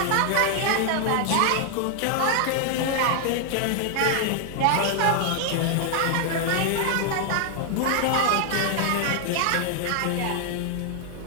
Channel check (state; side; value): different; both; correlation 0.00